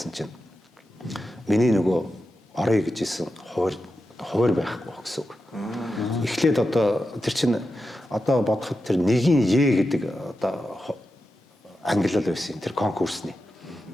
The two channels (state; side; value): normal; both; correlation 0.90